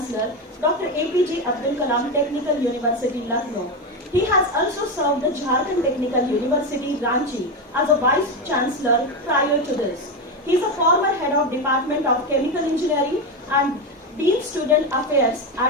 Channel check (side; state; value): both; normal; correlation 0.13